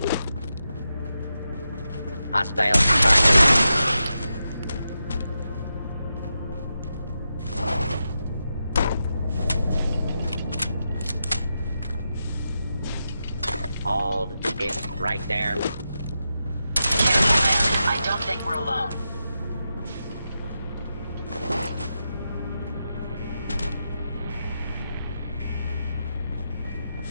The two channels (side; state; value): both; inverted; correlation -0.88